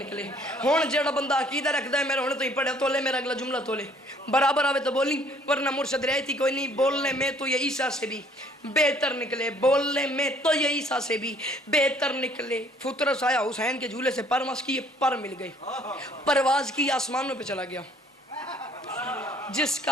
ہون جڑا بندہ عقیدہ رکھدا ہے میرے ہونے تو ہی پڑھے تو لے میرا اگلا جملہ تو لے برابر آوے تو بولی ورنہ مرشد رہتی کوئی نہیں. بولنے میں تو یہ عیسیٰ سے بھی بہتر نکلے. بولنے میں تو یہ عیسیٰ سے بھی بہتر نکلے. فطرس آیا حسین کے جھولے سے پرواز کی، پر مل گئی. پرواز کی آسمانوں پہ چلا گیا. جس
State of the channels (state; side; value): normal; both; correlation 0.60